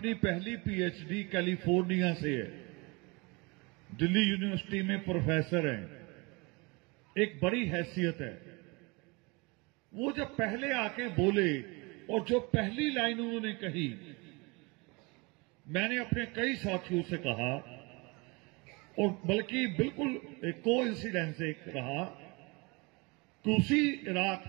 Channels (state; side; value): quieter; left; 27.3 dB